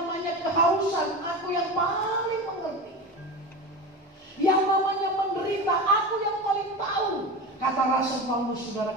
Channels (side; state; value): both; normal; correlation 0.26